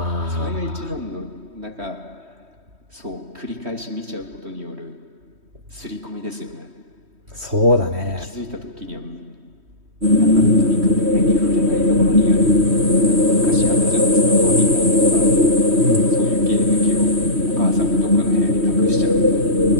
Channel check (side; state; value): left; late; 3.1 ms